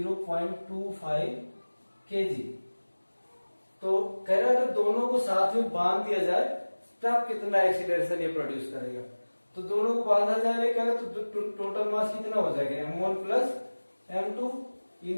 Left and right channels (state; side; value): inverted; both; correlation -1.00